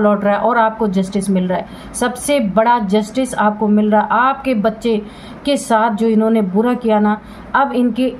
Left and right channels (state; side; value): identical; both; correlation 1.00